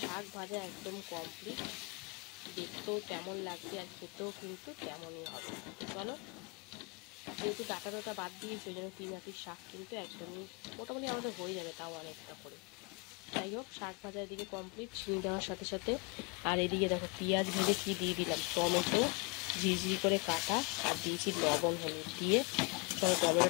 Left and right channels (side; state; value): right; quieter; 30.0 dB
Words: শাক ভাজা একদম কমপ্লিট, দেখতেও তেমন লাগবে আর খেতেও কিন্তু তেমনই হবে। চলো, যেহেতু ডাটা বাদ দিয়ে সেই জন্য 3 আটির শাক কিন্তু একদমই মোটামুটি আমাদের হয়ে যাবে, তাও অনেকটা করে। যাই হোক, শাক ভাজা এদিকে কমপ্লিট, চিনি দেওয়ার সাথে সাথে। আর এদিকে দেখো পেঁয়াজ ভেজে কি দিয়ে দিলাম, টমেটো ঝিরিঝিরি করে কাটা, আর দিয়েছি লবণ হলুদ দিয়ে। তবে